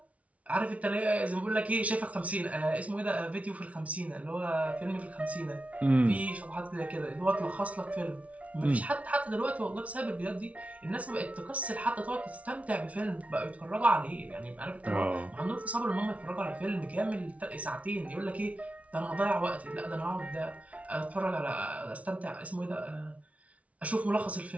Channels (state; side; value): late; left; 0.066 ms